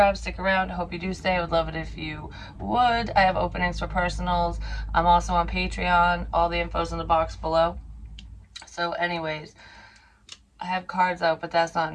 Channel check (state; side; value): identical; both; correlation 1.00